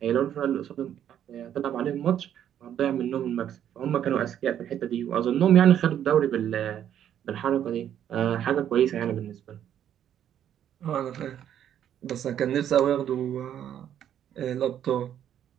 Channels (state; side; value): quieter; left; 10.1 dB